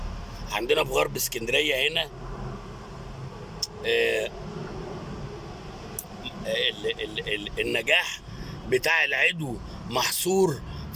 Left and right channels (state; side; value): identical; both; correlation 1.00